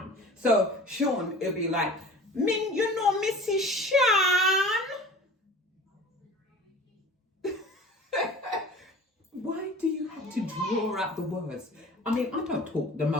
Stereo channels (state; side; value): normal; both; correlation 0.41